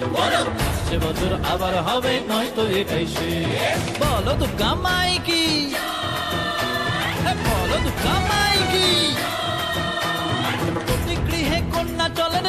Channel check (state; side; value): identical; both; correlation 1.00